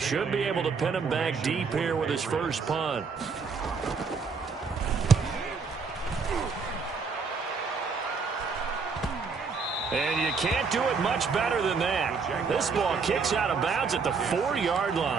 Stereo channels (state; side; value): quieter; left; 5.0 dB